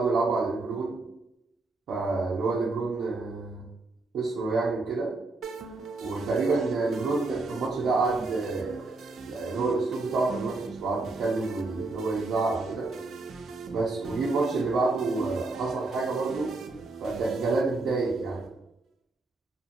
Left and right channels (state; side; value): quieter; left; 3.3 dB